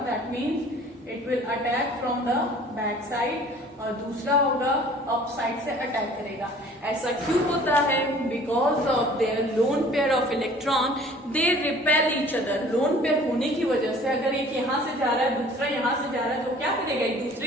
that means it will attack from the back side, और दूसरा होगा अप साइड से अटैक करेगा। ऐसा क्यों होता है, because of their lone pair of electron, they repel each other. Lone pair होने की वजह से अगर एक यहाँ से जा रहा है दूसरा यहाँ से जा रहा है, तो क्या करेगा, एक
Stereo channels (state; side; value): normal; both; correlation 0.50